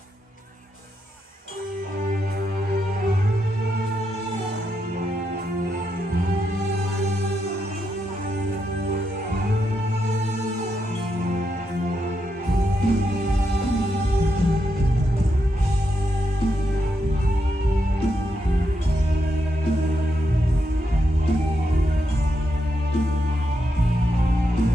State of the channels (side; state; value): both; normal; correlation 0.83